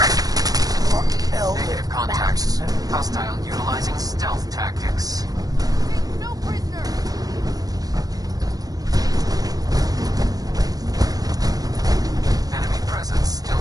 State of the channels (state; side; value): late; left; 0.18 ms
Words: Negative contacts. Hostile utilizing stealth tactics. No prisoner! Enemy presence still